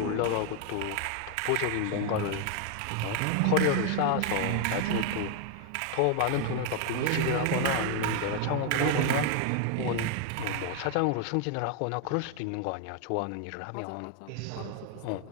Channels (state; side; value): different; both; correlation 0.00